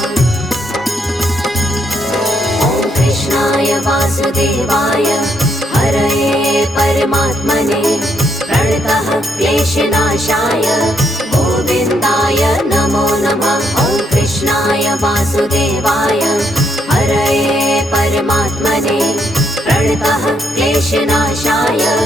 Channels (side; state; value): both; normal; correlation 0.75